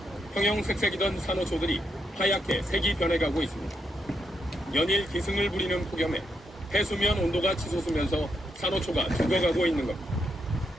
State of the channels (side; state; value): both; normal; correlation 0.80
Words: 형형색색이던 산호초들이 하얗게 색이 변해가고 있습니다. 연일 기승을 부리는 폭염에 해수면 온도가 치솟으면서 산호초가 죽어가고 있는 겁니다.